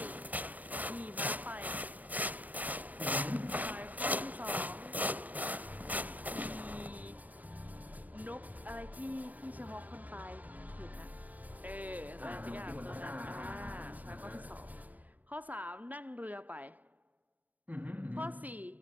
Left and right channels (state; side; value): late; left; 0.078 ms